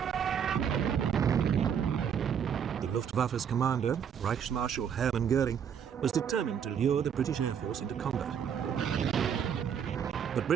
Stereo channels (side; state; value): left; quieter; 8.0 dB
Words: The Luftwaffe's commander, Reichsmarschall Hermann Goering, was determined to lure the British Air Force into combat. But